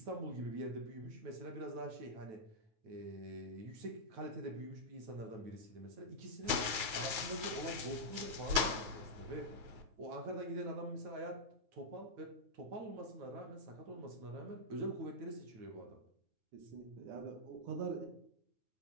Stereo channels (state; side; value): late; left; 9.3 ms